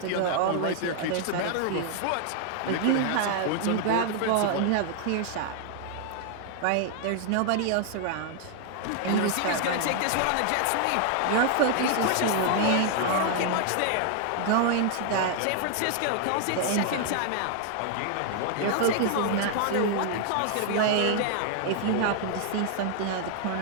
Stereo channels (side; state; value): both; different; correlation 0.00